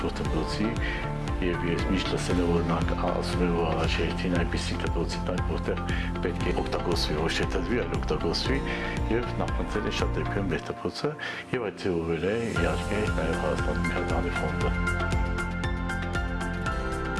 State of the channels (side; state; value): both; identical; correlation 1.00